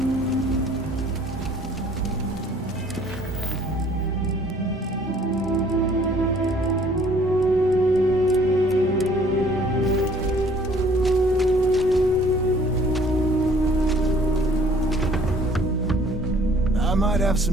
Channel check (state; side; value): normal; both; correlation 0.57